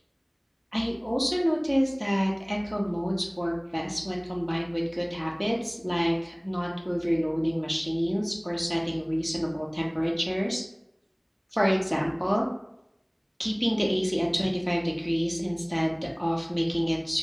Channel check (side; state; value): both; identical; correlation 1.00